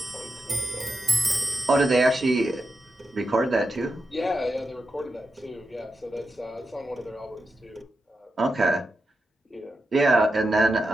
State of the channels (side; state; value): both; normal; correlation 0.88